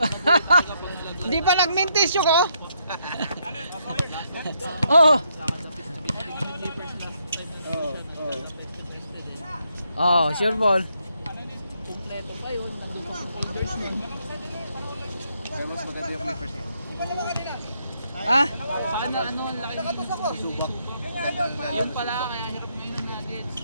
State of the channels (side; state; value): both; inverted; correlation -0.76